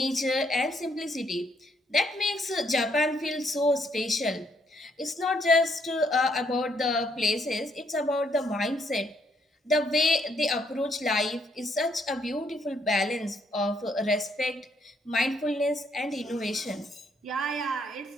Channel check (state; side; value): normal; both; correlation 0.71